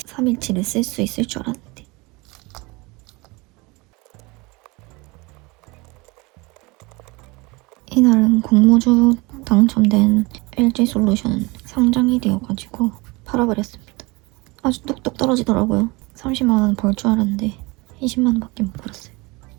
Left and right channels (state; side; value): quieter; left; 25.0 dB